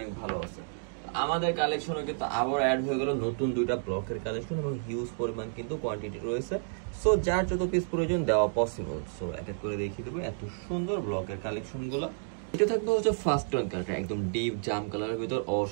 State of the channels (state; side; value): silent; left; digital silence